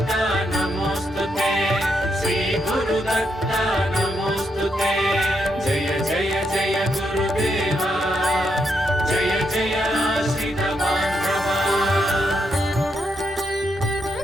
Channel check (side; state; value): both; normal; correlation 0.80